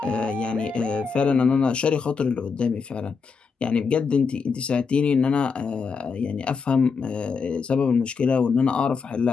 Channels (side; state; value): right; quieter; 5.3 dB